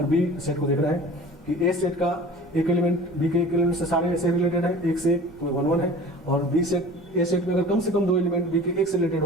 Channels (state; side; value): normal; both; correlation 0.41